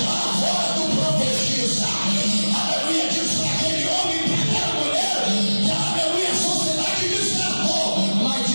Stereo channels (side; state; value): both; inverted; correlation -1.00